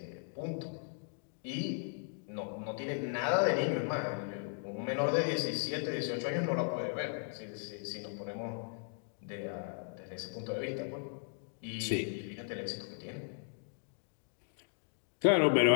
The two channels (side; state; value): right; silent; 53 dB below the other